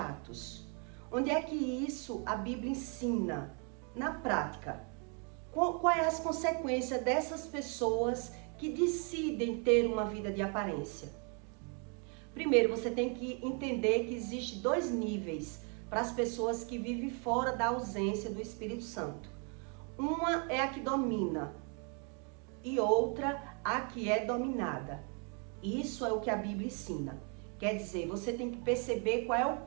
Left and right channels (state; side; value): quieter; left; 38.0 dB